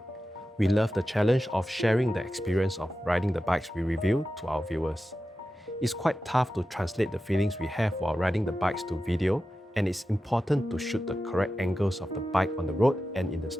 We love the challenge of sharing the experience of riding the bikes we review to our viewers. It's quite tough to translate the feelings we have while riding the bikes to video, and it's important to shoot the correct angles of the bike on the road and in the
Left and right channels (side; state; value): both; normal; correlation 0.92